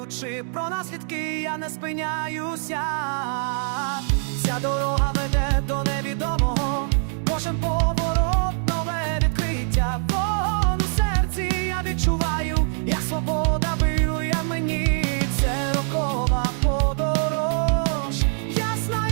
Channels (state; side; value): silent; left; 56 dB below the other